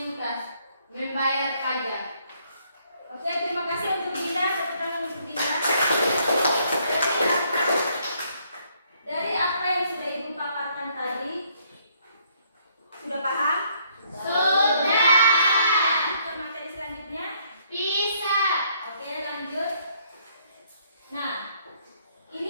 membayar pajak. Oke, terima kasih untuk Dinda. Tepuk tangan untuk Dinda. Dari apa yang sudah ibu paparkan tadi, sudah paham? Sudah. Ke materi selanjutnya. Bisa. Oke, lanjut. Nah,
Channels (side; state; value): both; inverted; correlation -0.69